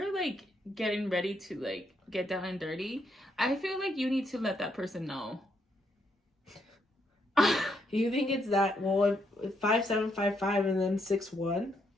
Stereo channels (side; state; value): both; normal; correlation 0.76